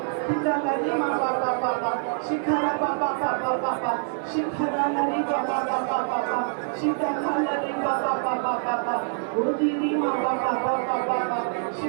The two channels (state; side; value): silent; left; digital silence